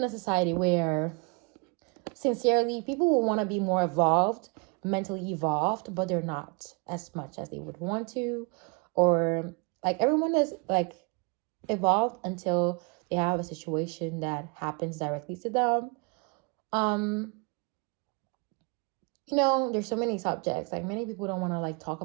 a society where, sincerely, people will want to be more evolved, mentally evolved, but they're not as much as they would want to. Or like, everyone is like evolved until they have a situation that happens directly to them. You know, there's so many subjects, like many people don't want to like talk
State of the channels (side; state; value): left; quieter; 32.3 dB